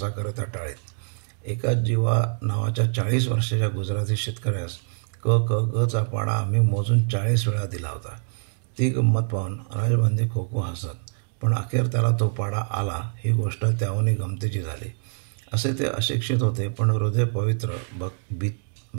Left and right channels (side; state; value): left; silent; 62 dB below the other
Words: टाळीत. एका जीवा नावाच्या 40 वर्षाच्या गुजराती शेतकऱ्यास क क ग चा पाडा आम्ही मोजून 40 वेळा दिला होता. ती गंमत पाहून राजबंदी खो हसत, पण अखेर त्याला तो पाडा आला ही गोष्ट त्याहूनही गमतीची झाली. असे ते अशिक्षित होते, पण हृदय पवित्र,